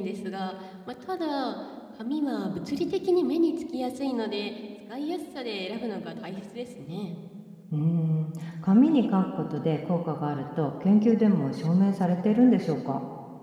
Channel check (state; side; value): identical; both; correlation 1.00